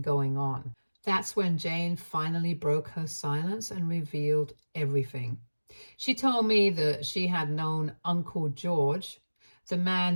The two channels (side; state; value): both; inverted; correlation -1.00